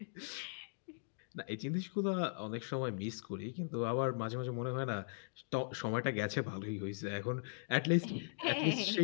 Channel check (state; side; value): silent; right; digital silence